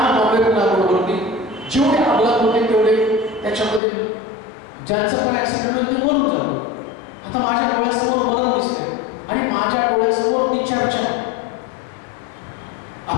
बरोबरती जेवढे अपघात होते तेवढे त्याच्यामध्ये ज्यांचं पण ऍक्सिडेंट होईल ते मरून जातो. आता माझ्या डोळ्यासमोर मरण दिसते आणि माझ्या डोळ्यासमोर ती चर्चा.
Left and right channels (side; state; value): right; drops out; at 3.8 s